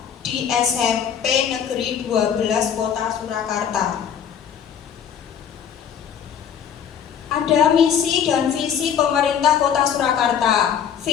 di SMP Negeri 12 Kota Surakarta. Ada misi dan visi pemerintah Kota Surakarta.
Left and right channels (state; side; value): quieter; right; 8.3 dB